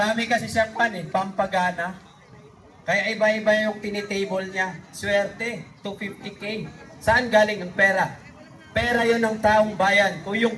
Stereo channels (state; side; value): identical; both; correlation 1.00